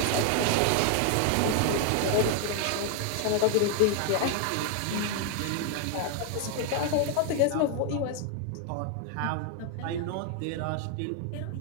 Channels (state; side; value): different; both; correlation 0.00